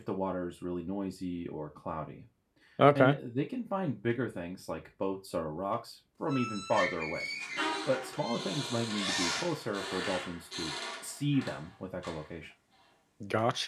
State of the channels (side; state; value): both; identical; correlation 1.00